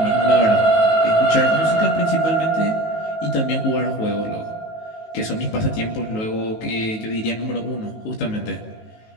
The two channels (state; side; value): late; right; 18 ms